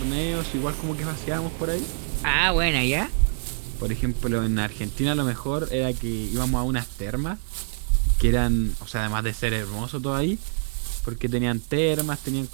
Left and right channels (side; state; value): left; silent; 61 dB below the other